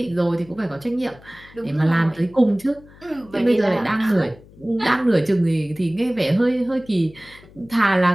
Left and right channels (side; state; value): left; noise; hum, 24 dB below the sound